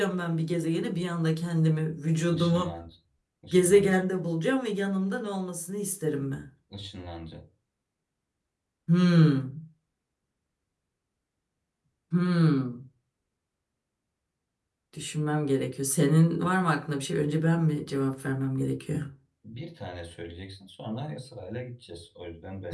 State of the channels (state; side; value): identical; both; correlation 1.00